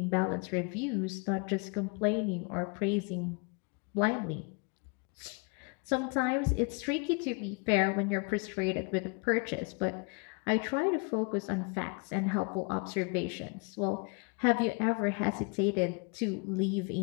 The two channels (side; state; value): right; quieter; 32.2 dB